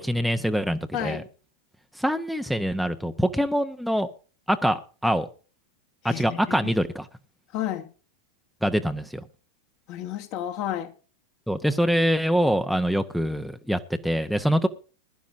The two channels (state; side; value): normal; both; correlation 0.91